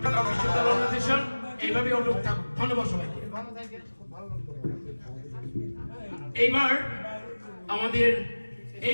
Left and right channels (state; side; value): inverted; both; correlation -1.00